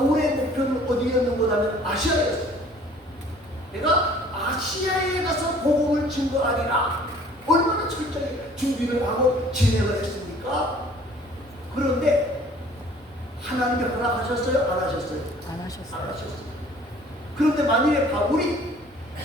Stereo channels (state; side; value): normal; both; correlation 0.53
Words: 목표는 어디였는가 하면 아시아였어요. 내가 아시아에 가서 복음을 증거하리라. 얼마나 철저하게 준비를 하고 진행을 했습니까? 그런데 하나님이 허락하셨어요? 안 하셨어요? 안 하셨어요. 안 하셨어요. 그런데 만일에 바울이